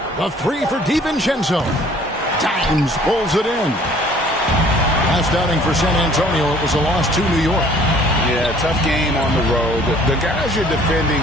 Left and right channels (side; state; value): both; normal; correlation 0.54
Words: The 3 for DiVincenzo. Dimes pulls it in. Last outing for San Antonio, it was a loss to New York. Yeah, tough game on the road. The guys you're defending,